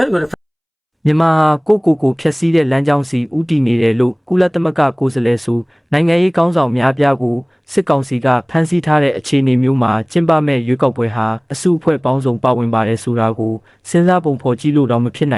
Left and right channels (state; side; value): identical; both; correlation 1.00